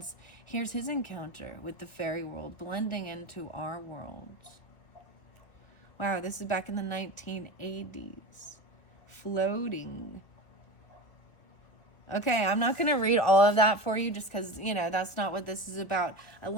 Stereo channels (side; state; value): right; late; 1.8 ms